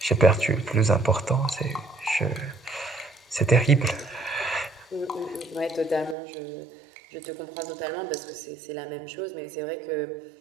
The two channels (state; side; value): drops out; left; at 6.2 s